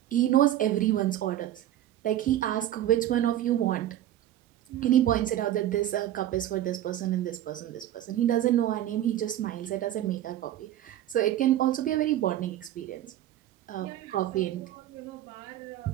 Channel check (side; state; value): left; quieter; 12.6 dB